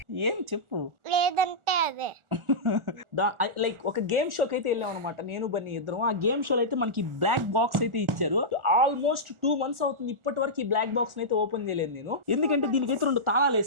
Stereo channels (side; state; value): left; late; 1.4 ms